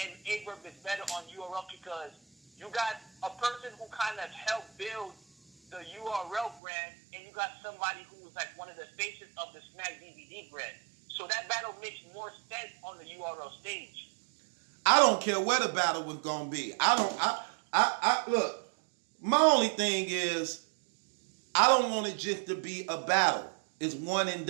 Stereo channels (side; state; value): left; drops out; at 6.6 s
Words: and Verb is better on URL because you got a person who kind of helped build the URL brand, and you got somebody who was like one of the faces of the Smack DVD brand. So that battle makes more sense on the URL stage. I don't care where the battle was gonna be. I look, my only thing is I don't want it just to be a battle. It's one and